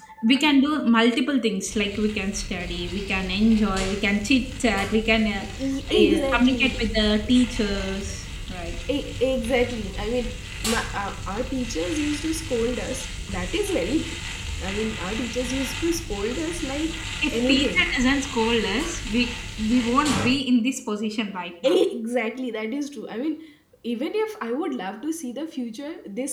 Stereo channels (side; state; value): both; identical; correlation 1.00